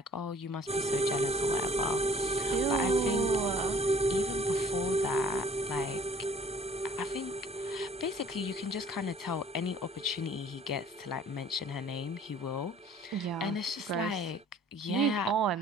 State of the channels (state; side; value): normal; both; correlation 0.53